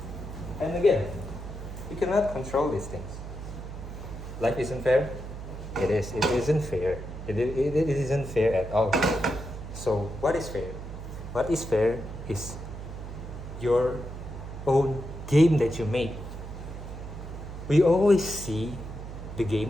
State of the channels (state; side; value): noise; right; hum, 10 dB below the sound